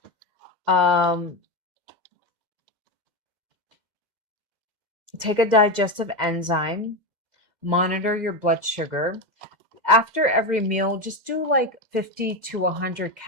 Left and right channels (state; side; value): late; left; 2.1 ms